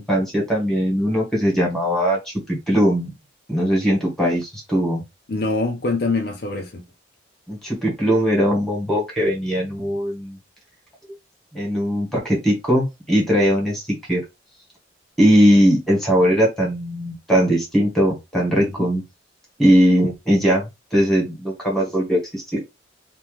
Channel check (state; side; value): normal; both; correlation 0.76